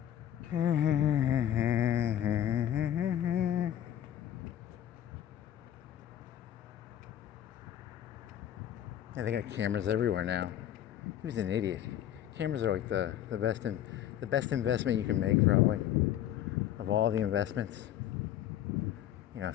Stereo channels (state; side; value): quieter; right; 11.2 dB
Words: Yeah, they got cameras everywhere now. He was an idiot. Cameras are like the best investment you can make, probably, of all the investments. You know,